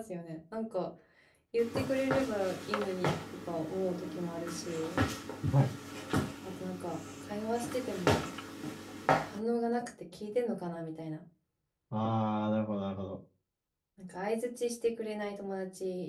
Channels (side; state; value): both; identical; correlation 1.00